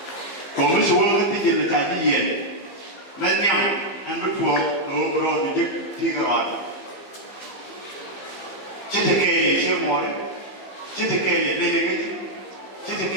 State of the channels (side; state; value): right; late; 15 ms